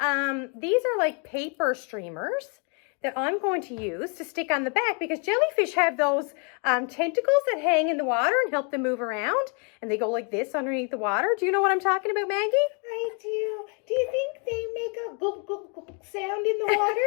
These are like paper streamers that I'm going to use to stick on the back because jellyfish have those tentacles that hang in the water and help them move around. And they go like this underneath the water. Do you know what I'm talking about, Maggie? I do. Do you think they make a gulp, gulp, gulp sound in the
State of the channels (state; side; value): quieter; right; 37.6 dB